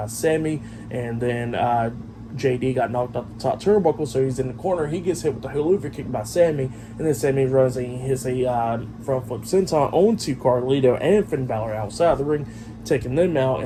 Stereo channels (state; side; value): identical; both; correlation 1.00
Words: Sammy, and then JD got knocked off the top turnbuckle, so he's in the corner. He gets hit with the haluva kick by Sammy, and then Sammy runs and he hits a front flip senton onto Carlito and Finn Balor outside the ring, taking them out,